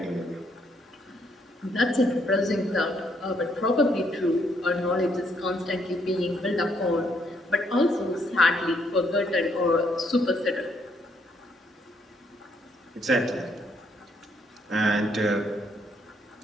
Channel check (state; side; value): normal; both; correlation 0.71